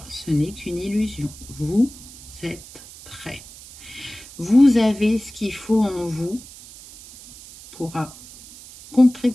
ce n'est qu'une illusion. Vous êtes prêt. Vous avez ce qu'il faut en vous pour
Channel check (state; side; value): noise; right; hiss, 18 dB below the sound